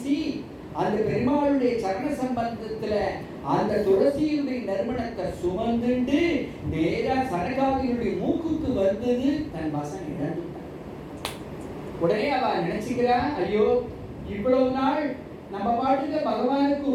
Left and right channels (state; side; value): identical; both; correlation 1.00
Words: அந்த பெருமாளுடைய சரண சம்பந்தத்துல அந்த துளசியுடைய நறுமணத்தை சுமந்துண்டு நேரா சனகாதியுடைய மூக்குக்கு வந்தது. தன் வசம் இழந்துட்டான். உடனே அவ நினைச்சுக்கிறா, ஐயோ இவ்வளவு நாள் நம்ம பாட்டுக்கு பகவானுக்கு